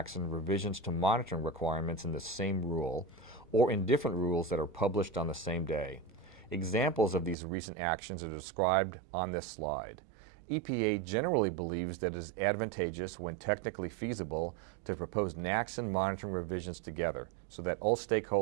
and revisions to monitoring requirements in the same rule, or in different rules that are published on the same day. Examples of these recent actions are described on this slide. EPA generally believes that it is advantageous, when technically feasible, to propose NACS and monitoring revisions together so that all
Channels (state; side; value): drops out; left; at 7.4 s